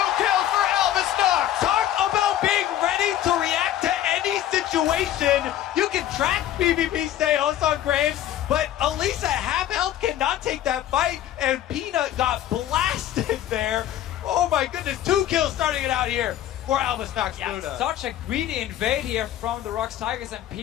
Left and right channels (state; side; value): quieter; right; 12.0 dB